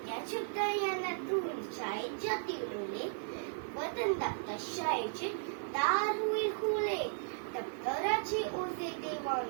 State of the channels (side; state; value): left; silent; digital silence